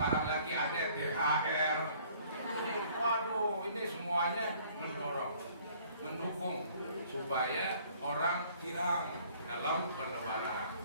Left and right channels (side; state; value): both; inverted; correlation -0.57